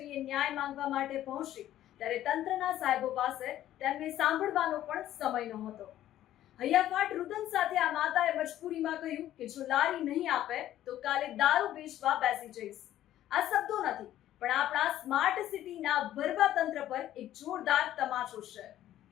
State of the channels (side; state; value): right; quieter; 12.8 dB